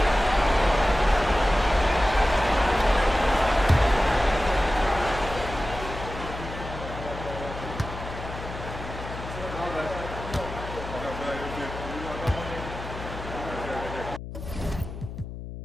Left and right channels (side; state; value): left; noise; hum, 10 dB below the sound